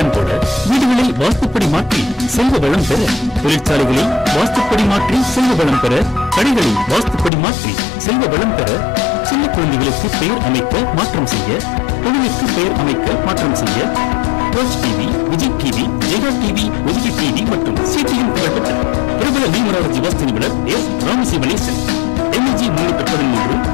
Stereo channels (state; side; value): drops out; right; at 7.3 s